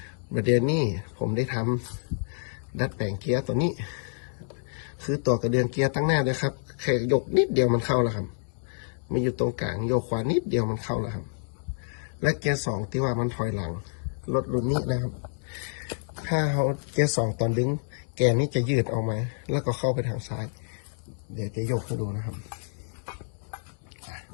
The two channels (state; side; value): silent; right; digital silence